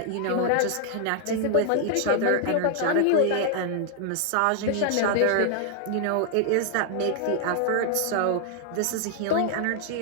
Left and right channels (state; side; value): different; both; correlation 0.00